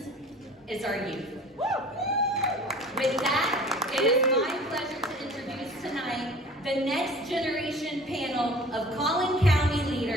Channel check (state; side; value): normal; both; correlation 0.45